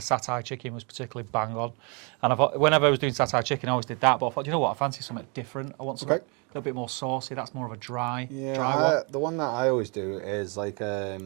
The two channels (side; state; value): left; quieter; 33.8 dB